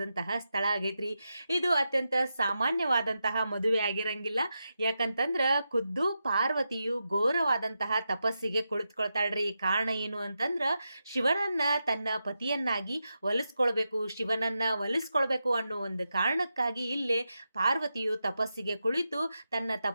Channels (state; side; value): inverted; both; correlation -0.88